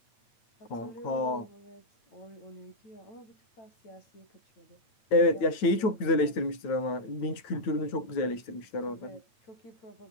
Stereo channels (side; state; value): right; late; 9.1 ms